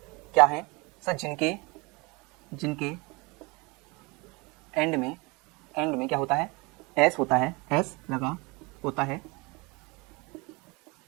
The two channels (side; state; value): left; quieter; 26.8 dB